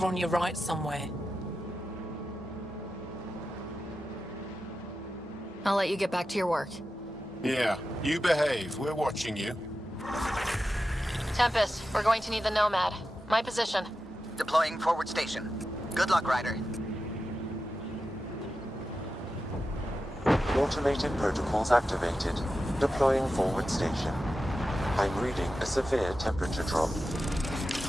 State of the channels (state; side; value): normal; both; correlation 0.91